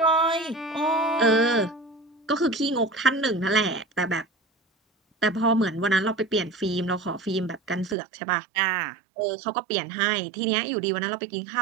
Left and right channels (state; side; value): drops out; left; at 8.0 s